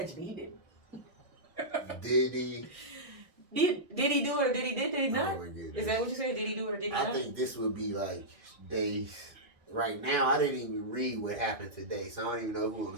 he didn't. Diddy. Did he do it or did he not? Oh my goodness. Is that what you said? Did he do it or did he not? I think this would be like days. Right now, I didn't even read what happened today, so I don't even know who on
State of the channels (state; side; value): late; left; 1.6 ms